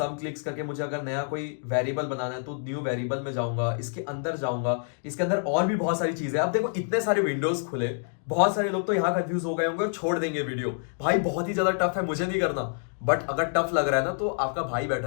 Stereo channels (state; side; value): silent; right; digital silence